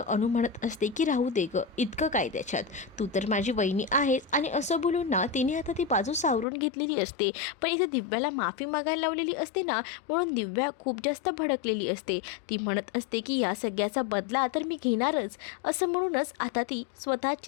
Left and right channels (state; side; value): drops out; right; at 6.5 s